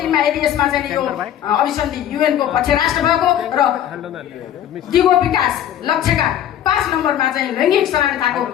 यदि यसमा चाहिँ यो अभिसन्धि युएनको पक्ष राष्ट्र भएको र दिगो विकास लक्ष्यका 5 नम्बरमा चाहिँ लैङ्गिक समानताको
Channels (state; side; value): quieter; right; 10.8 dB